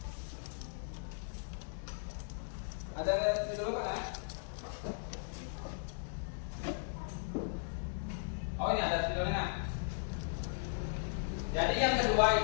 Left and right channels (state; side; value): silent; right; digital silence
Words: Ada di dulu kan? Oh, ini ada videonya. Jadi yang